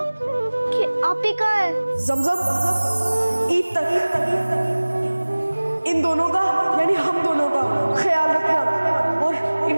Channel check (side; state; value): both; inverted; correlation -1.00